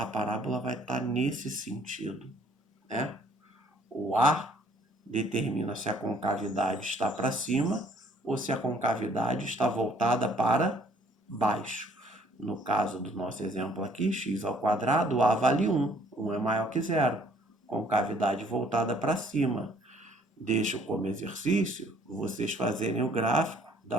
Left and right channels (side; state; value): both; normal; correlation 0.60